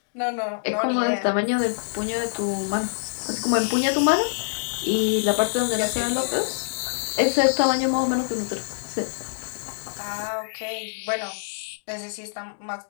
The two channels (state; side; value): silent; right; digital silence